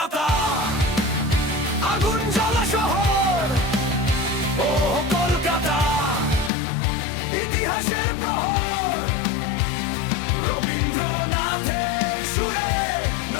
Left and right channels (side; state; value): right; drops out; at 6.5 s